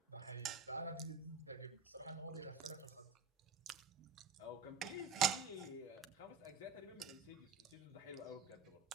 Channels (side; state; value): left; quieter; 5.6 dB